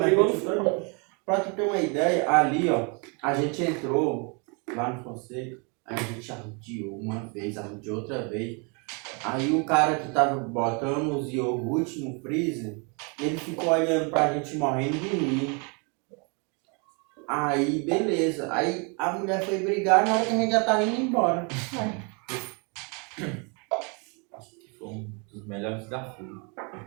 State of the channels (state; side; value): quieter; left; 34.1 dB